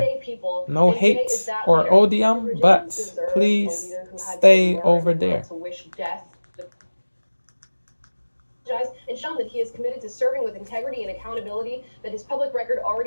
No hate or odium, but please stay over there. And shown that he is committed to serving with integrity and accountability that his public record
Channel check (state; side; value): inverted; both; correlation -1.00